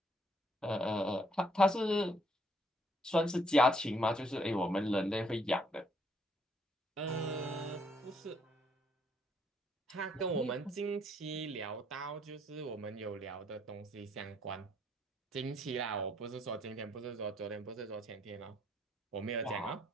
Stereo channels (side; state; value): both; normal; correlation 0.68